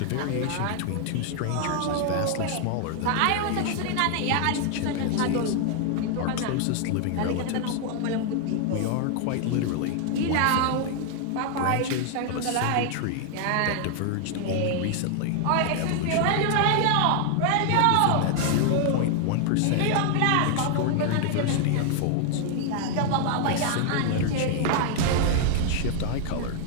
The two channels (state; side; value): different; both; correlation 0.00